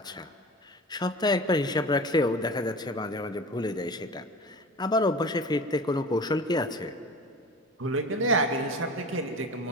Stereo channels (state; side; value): normal; both; correlation 0.35